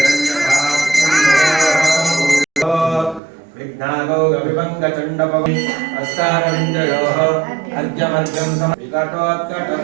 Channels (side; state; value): left; drops out; at 3.2 s